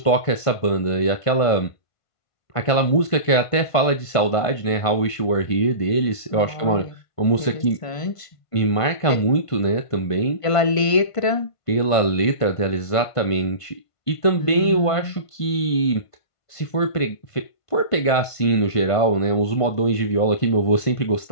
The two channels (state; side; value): late; right; 1.5 ms